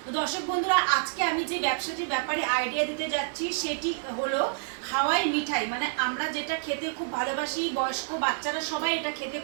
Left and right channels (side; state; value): left; silent; 59 dB below the other